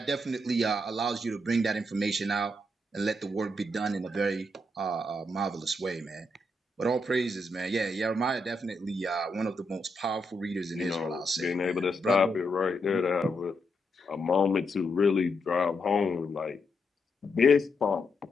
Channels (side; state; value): both; normal; correlation 0.81